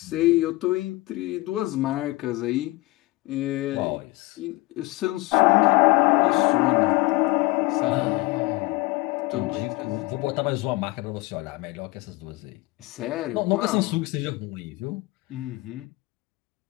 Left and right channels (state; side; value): quieter; right; 21.7 dB